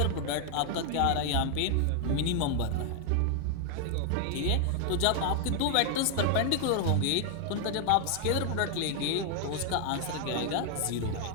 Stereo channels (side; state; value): both; different; correlation 0.00